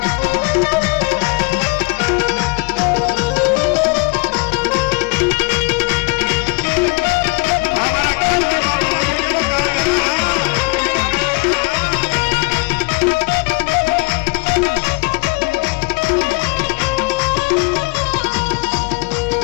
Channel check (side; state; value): right; quieter; 29.7 dB